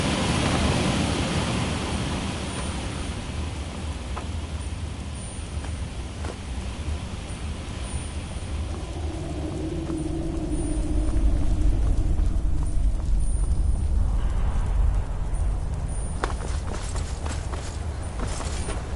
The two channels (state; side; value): identical; both; correlation 1.00